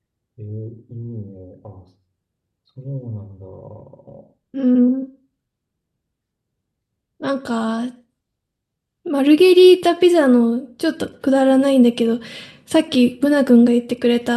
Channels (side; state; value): both; identical; correlation 1.00